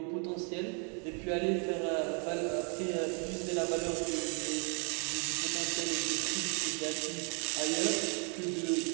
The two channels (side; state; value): left; quieter; 39.4 dB